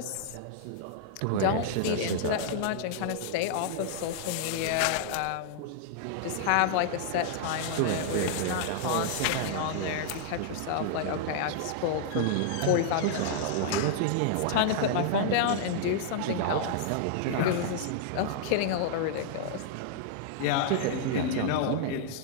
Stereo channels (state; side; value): different; both; correlation -0.01